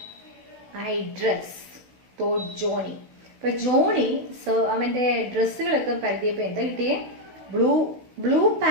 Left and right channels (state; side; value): late; left; 16 ms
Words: I dress? thought Johnny. അപ്പോൾ ജോണി അവൻ്റെ ഡ്രസ്സുകളൊക്കെ പരതിയപ്പോൾ എന്താ കിട്ടിയേ? ബ്ലൂ